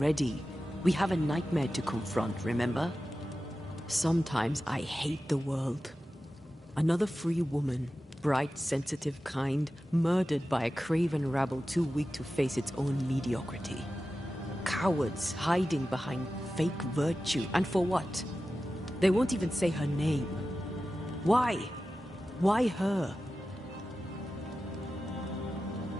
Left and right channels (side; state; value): both; normal; correlation 0.93